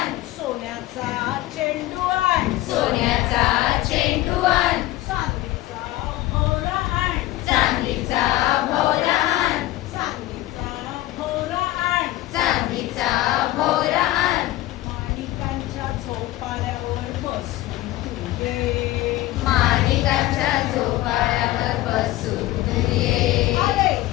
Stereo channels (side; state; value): right; quieter; 16.6 dB